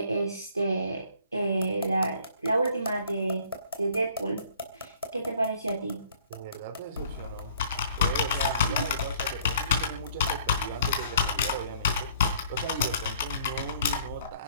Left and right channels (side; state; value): both; inverted; correlation -0.58